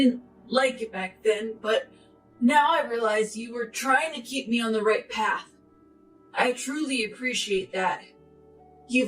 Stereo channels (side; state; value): both; identical; correlation 1.00